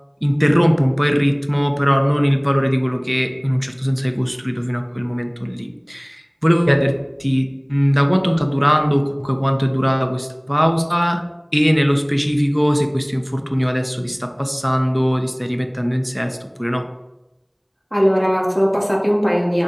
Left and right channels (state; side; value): identical; both; correlation 1.00